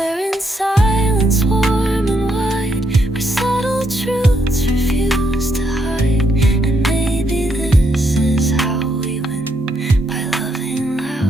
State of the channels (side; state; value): both; normal; correlation 0.76